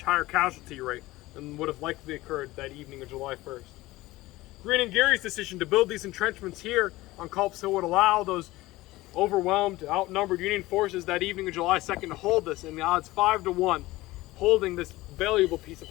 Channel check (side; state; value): right; quieter; 18.6 dB